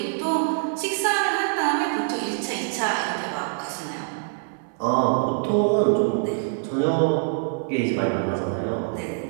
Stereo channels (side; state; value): left; silent; 62 dB below the other